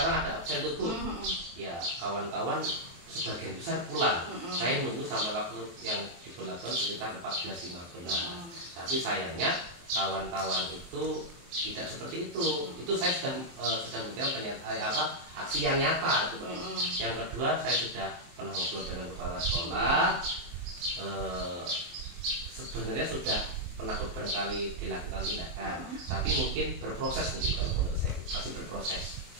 ada absen tuh Bu, ya kawan-kawan sebagian besar pulang. Saya nunggu sampai waktu yang diberlakukan sekitar 14.15. Tapi sayangnya kawan-kawan itu tidak seperti itu. Itu saya sudah memberikan aksi yang nyata itu Pak. Yang kedua, saya sudah pernah ngobrol dengan kepala sekolah. Sebenarnya sudah pernah beberapa kali dilakukan tindakan, tapi mungkin berproses mungkin kalau menurut saya masih berproses.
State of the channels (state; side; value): late; left; 23 ms